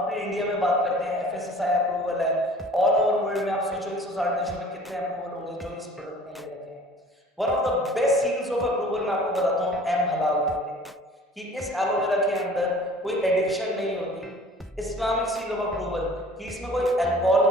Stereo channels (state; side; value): normal; both; correlation 0.48